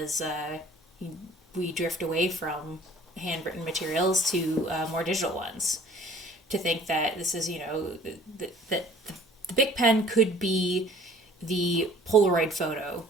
we drift away from handwritten materials to more digital ones. To think that this is that the Bic pen could be the Polaroid photo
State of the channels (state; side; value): normal; both; correlation 0.52